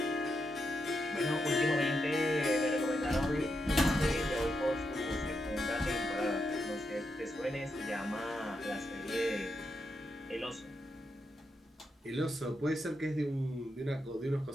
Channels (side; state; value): both; normal; correlation 0.84